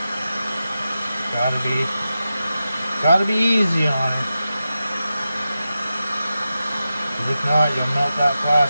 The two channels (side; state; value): both; inverted; correlation -0.92